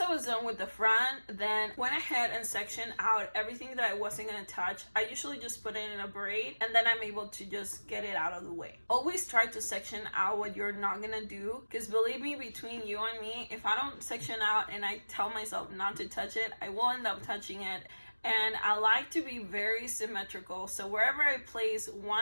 I was done with the front, then went ahead and sectioned out everything that I wasn't gonna touch. I usually just put it in a braid and then I'm able to just get it out of the way. Always try to section out what you're not gonna do, because believe me, between you and me, if I don't section out and I tell myself not to touch it, I will end up touching it. And I like to be very symmetrical. So wherever I place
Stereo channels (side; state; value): both; inverted; correlation -1.00